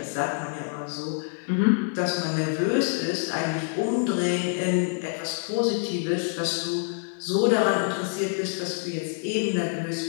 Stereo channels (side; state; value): right; silent; 59 dB below the other